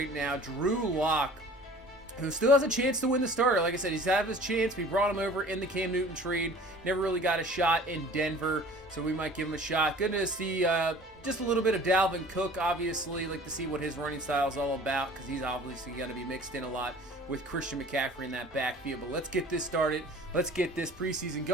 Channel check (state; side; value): normal; both; correlation 0.46